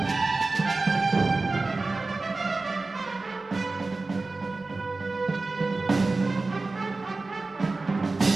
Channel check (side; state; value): left; quieter; 3.5 dB